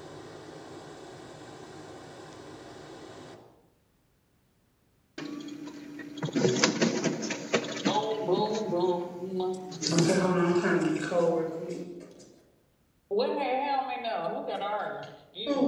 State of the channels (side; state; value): both; identical; correlation 1.00